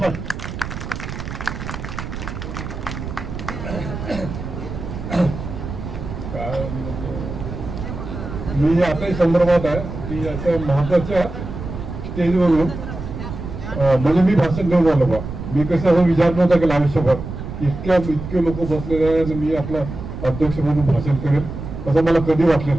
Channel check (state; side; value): noise; right; rumble, 8 dB below the sound